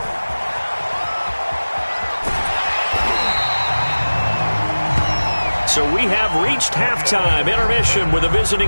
So we have reached halftime intermission with the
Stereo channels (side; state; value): both; inverted; correlation -1.00